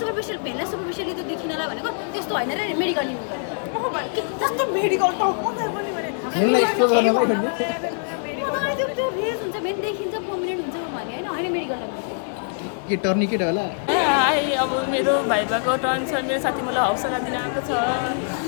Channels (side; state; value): right; silent; 61 dB below the other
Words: सुपरफिसियल भेनलाई सुपरफिसियली त्यो देखिनलाई भनेको त्यस्तो हैन रे मेडिकल युज गरेर ओह भाइ के कस्तो मेडिकल त मलाई पनि भने त्यसलाई एक्सप्लोर गर्नलाई त्यो रिज हुन्छ भेन देखिन्छ पर्मनेन्ट हुन्छ भने हैन मेडिकल के टर्निकेट होला? हाई, अब मेरो भाइबाको टर्न छ। मेरो साथी मलाई हौसला दिन आएको छ।